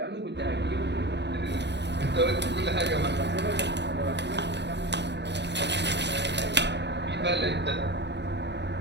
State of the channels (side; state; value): left; late; 0.50 ms